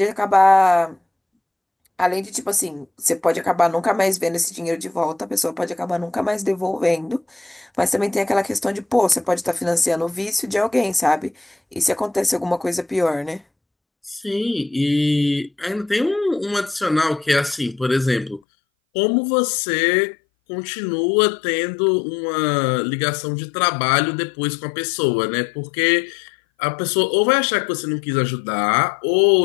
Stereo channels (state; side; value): drops out; right; at 18.4 s